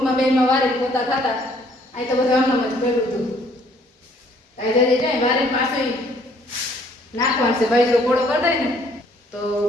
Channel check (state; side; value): normal; both; correlation 0.62